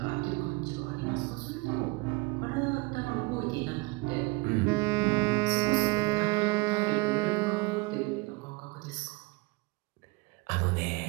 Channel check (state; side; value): quieter; left; 25.8 dB